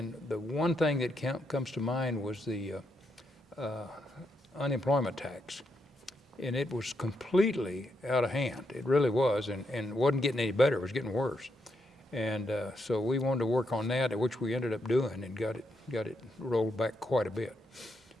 the one thing that comes to mind was the unemployment tax. And it was completely out of hand. It really was, and wasn't getting any better. It was getting worse. And so we wanted to work on that, which we ended up doing, and got it rolled back quite a bit.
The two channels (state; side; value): normal; both; correlation 0.80